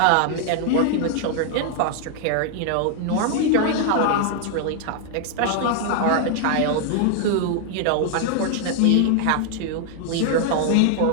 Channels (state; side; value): different; both; correlation 0.00